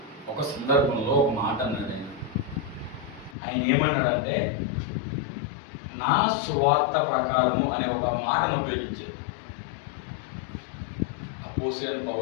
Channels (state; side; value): drops out; right; at 3.4 s